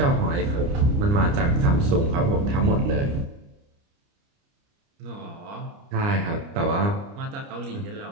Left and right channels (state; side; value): late; left; 29 ms